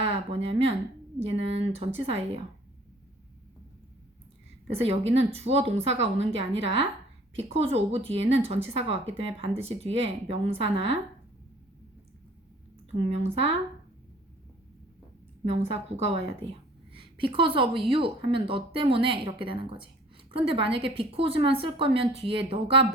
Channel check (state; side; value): normal; both; correlation 0.53